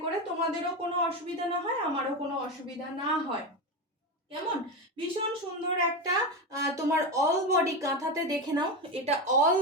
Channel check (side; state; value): both; normal; correlation 0.17